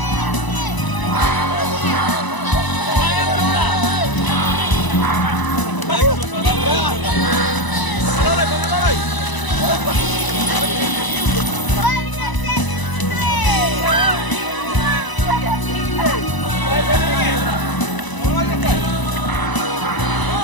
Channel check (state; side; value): late; right; 1.0 ms